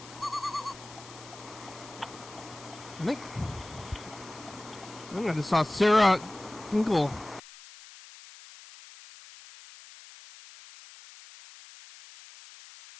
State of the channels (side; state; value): left; noise; hiss, 18 dB below the sound